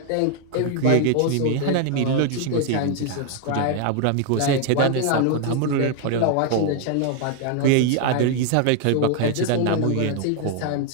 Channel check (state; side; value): different; both; correlation 0.00